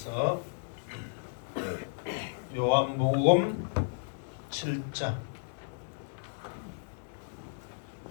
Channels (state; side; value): silent; right; digital silence